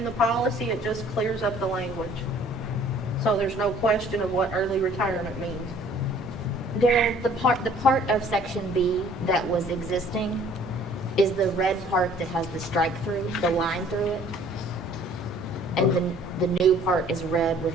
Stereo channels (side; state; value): both; normal; correlation 0.55